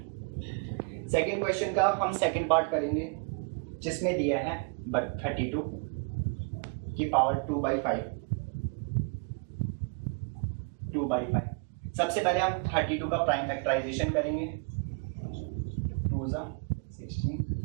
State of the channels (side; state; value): left; quieter; 37.8 dB